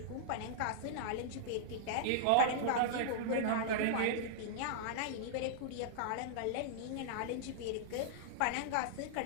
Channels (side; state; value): both; different; correlation -0.01